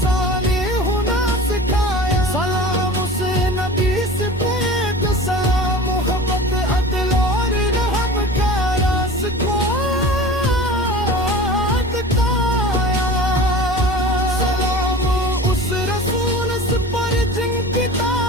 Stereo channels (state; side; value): normal; both; correlation 0.37